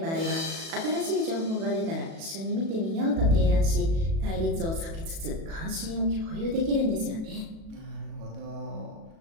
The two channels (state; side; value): late; left; 37 ms